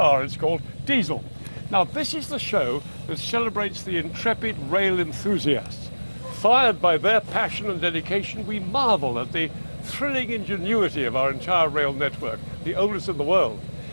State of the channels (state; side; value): inverted; both; correlation -1.00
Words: it's called, diesel. Now this is the show that celebrates the intrepid rail enthusiasts. Fired by their passion and dedication, we marvel at the thrilling ingenuity of our entire rail network, the oldest in the world,